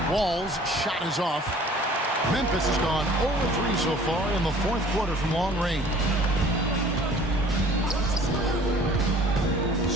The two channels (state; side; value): normal; both; correlation 0.50